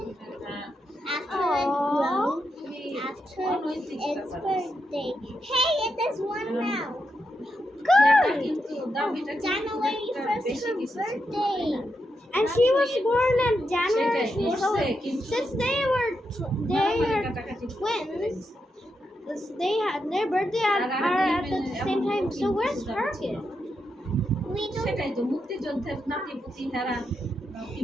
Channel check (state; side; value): normal; both; correlation 0.84